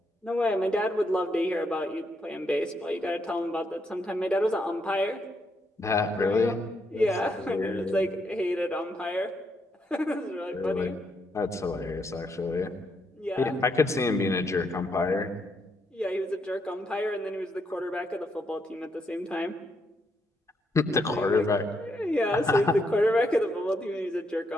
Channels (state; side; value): normal; both; correlation 0.77